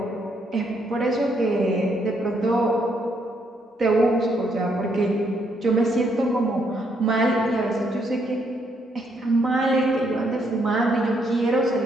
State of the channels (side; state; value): both; normal; correlation 0.74